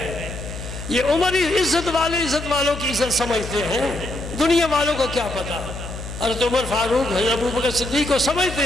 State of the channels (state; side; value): noise; left; hum, 10 dB below the sound